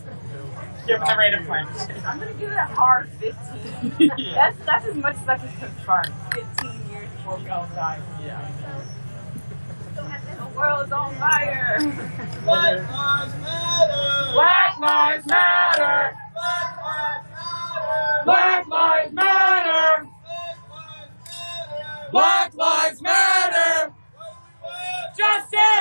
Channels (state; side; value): inverted; both; correlation -1.00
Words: Given the rate of climate change. I'm going to give it a hard 15. Yeah. That's as much as I can confirm. 15 years before we all die. Yeah. The world's on fire. Black lives matter. Black lives matter. Black lives matter. Black lives matter.